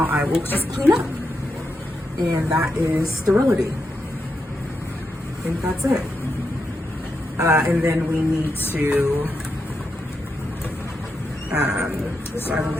I will just clean up. And that is sterility. I think that's it. And then we need to, so I will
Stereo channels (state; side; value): normal; both; correlation 0.85